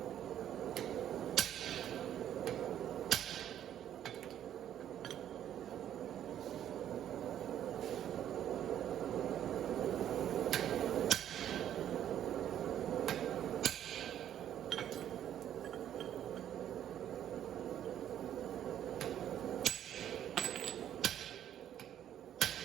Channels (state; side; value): quieter; left; 10.6 dB